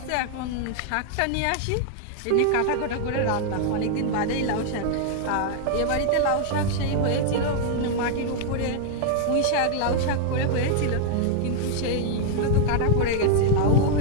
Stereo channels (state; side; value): different; both; correlation 0.00